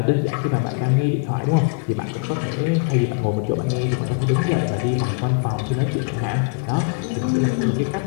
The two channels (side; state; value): right; quieter; 30.9 dB